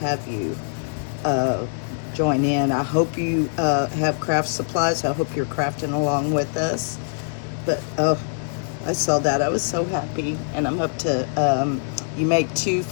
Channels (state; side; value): silent; right; 63 dB below the other